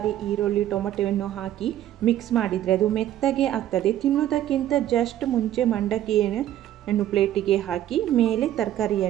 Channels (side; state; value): left; quieter; 12.3 dB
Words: ಈರುಳ್ಳಿ, ಟೊಮೆಟೊವನ್ನು ಹಾಕಿ ಮಿಕ್ಸ್ ಮಾಡಿದರೆ ಅದು ಮೆತ್ತಗೆ ಆಗ್ತದೆ. ತಿನ್ನೋದಕ್ಕಿಂತ ಜಸ್ಟ್ ಮುಂಚೆ ಮಂಡಕ್ಕಿಯನ್ನು ಪ್ಲೇಟಿಗೆ ಹಾಕಿ ಮೇಲೆ